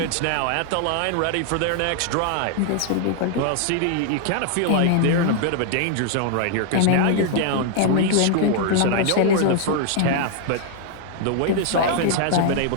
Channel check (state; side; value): different; both; correlation -0.01